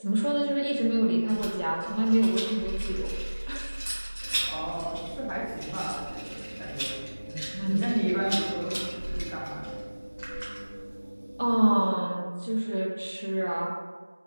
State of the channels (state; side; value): inverted; both; correlation -1.00